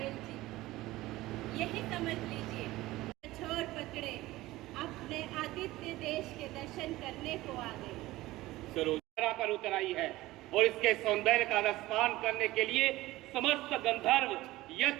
जी, यही समझ लीजिए, छोड़ पकड़े अपने आदित्य देश के दर्शन करने को आ गए। सरोजरा पर उतर आई है और इसके सौंदर्य का रसपान करने के लिए समस्त गंधर्व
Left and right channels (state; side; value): quieter; left; 17.9 dB